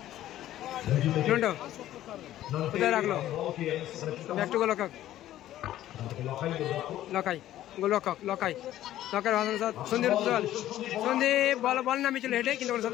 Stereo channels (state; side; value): quieter; right; 13.3 dB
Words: কোথায় রাখলো ব্যাক টু গোলরক্ষক লখাই সন্দীপ বল নামে ছিল হেঁটে, কিন্তু